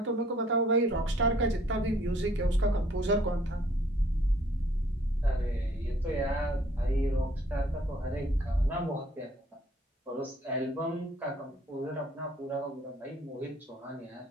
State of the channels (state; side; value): normal; both; correlation 0.60